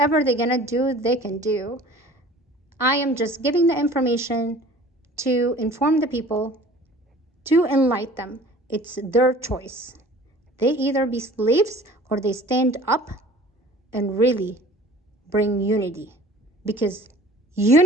they're gonna do, they can do. I am just giving the information to inform the people, to enlighten them. It's their choice. They either be slaves or they stand up and really bring unity. Because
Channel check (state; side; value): normal; both; correlation 0.46